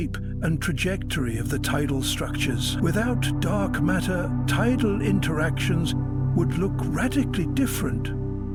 and trajectory of the tidal structures. Without dark matter, tidal interactions would look radically different,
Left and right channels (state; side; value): identical; both; correlation 1.00